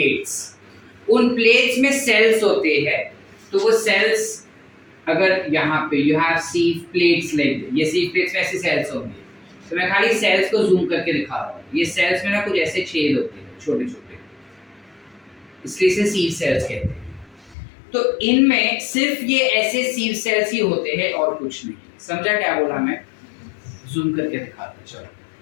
उन प्लेट्स में सेल्स होते हैं. तो वो सेल्स अगर यहाँ पे यू हैव सीव प्लेट्स, लाइक ये सीव प्लेट्स में ऐसे सेल्स होंगे. तो मैं खाली सेल्स को जूम करके दिखा रहा हूँ. ये सेल्स में ना कुछ ऐसे छेद होते हैं छोटे छोटे, इसलिए इसे सीव सेल्स कहते हैं. तो इनमें सिर्फ ये ऐसे सीव सेल्स ही होते हैं और कुछ नहीं. समझा क्या बोला मैं? जूम करके दिखाता. चलो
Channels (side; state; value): right; drops out; at 17.6 s